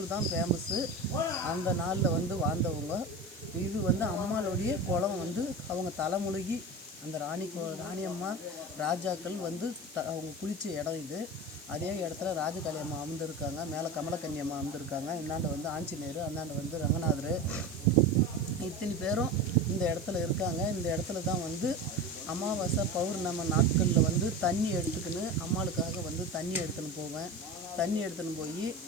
தான் ஃபேமஸ்ஸு. அந்த நாளில் வந்து வாழ்ந்தவங்க. இது வந்து அம்மாளுடைய குளம் வந்து அவங்க தலைமுழுகி அந்த ராணியம்மா ராஜாக்கள் வந்து அவங்க குளித்த இடம் இது. அதே இடத்துல ராஜகாளி அம்மா அமர்ந்திருக்காங்க, மேலே கமலக்கன்னி அம்மா அமர்ந்திருக்காங்க. இந்தாண்ட வந்து ஆஞ்சநேயர், அந்தாண்ட வந்து ரங்கநாதர், இத்தனை பேரும் இந்த இடத்துல இருக்காங்க. இந்த இடத்துல தான் வந்து அமாவாசை பௌர்ணமி நாட்களில் வந்து தண்ணி எடுத்துக்கின்னு அம்மாளுக்காக வந்து தண்ணி எடுத்துன்னு போவேன். தண்ணி எடுத்துன்னு போய்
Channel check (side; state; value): right; noise; hiss, 20 dB below the sound